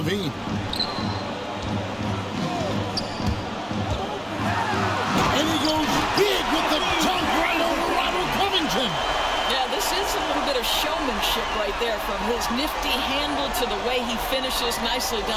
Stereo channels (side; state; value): both; identical; correlation 1.00